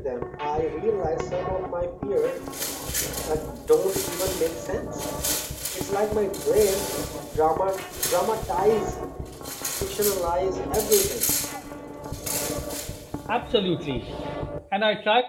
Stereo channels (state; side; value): identical; both; correlation 1.00